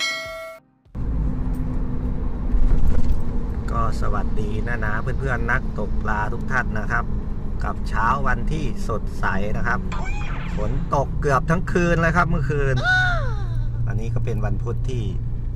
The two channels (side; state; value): both; identical; correlation 1.00